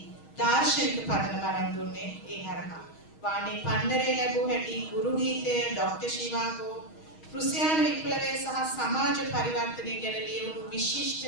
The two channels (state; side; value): late; right; 6.3 ms